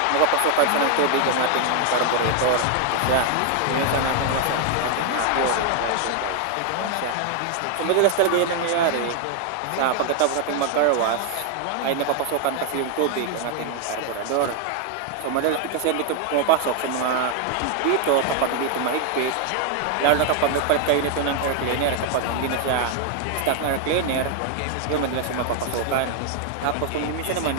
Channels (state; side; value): different; both; correlation 0.00